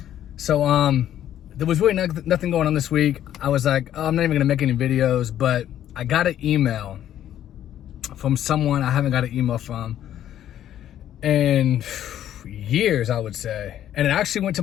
So there was really nothing going on this week. I was like, oh, I'm not even gonna make any videos, but I got an email from someone I haven't got an email from in years, I would say. And it actually went to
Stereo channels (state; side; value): quieter; right; 11.3 dB